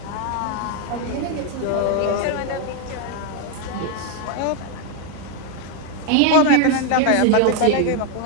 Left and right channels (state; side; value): different; both; correlation 0.01